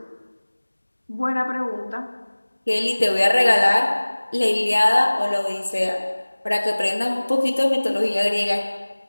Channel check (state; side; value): inverted; both; correlation -1.00